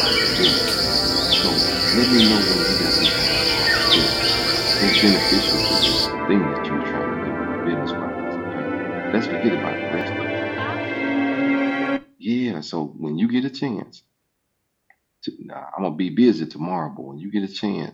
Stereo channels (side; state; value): both; identical; correlation 1.00